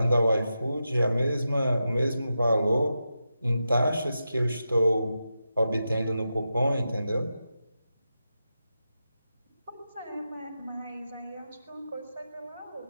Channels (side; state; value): both; inverted; correlation -0.89